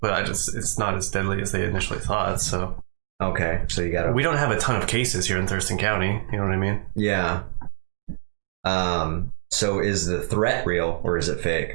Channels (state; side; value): silent; left; digital silence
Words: not as deadly as they initially thought. So okay, so we don't have a ton of cases here in Thurston County. You know what I mean? Yeah. So is the threat real or is it